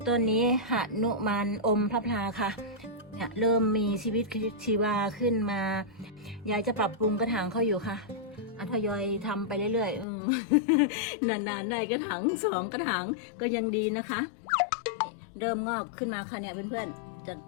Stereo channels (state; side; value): drops out; right; at 10.1 s